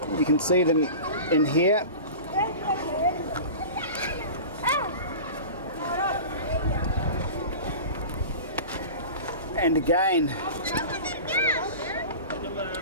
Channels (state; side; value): inverted; both; correlation -0.34